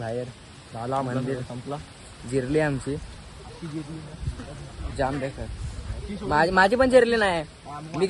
झाला मंदिर संपला. जिरली आमची जाम देखत. माझी पण जिरली नाही. मी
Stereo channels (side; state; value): both; identical; correlation 1.00